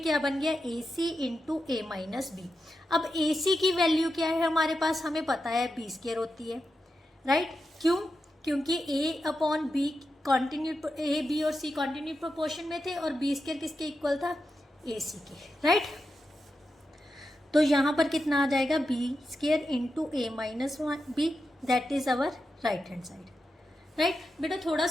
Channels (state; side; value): normal; both; correlation 0.88